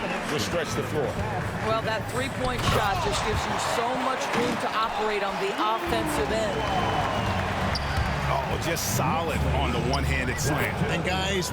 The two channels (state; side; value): identical; both; correlation 1.00